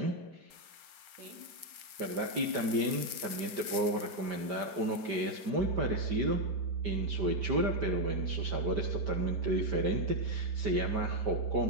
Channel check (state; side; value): late; left; 4.4 ms